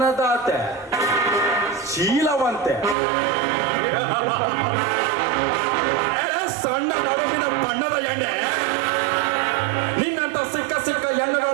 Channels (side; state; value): left; drops out; at 3.0 s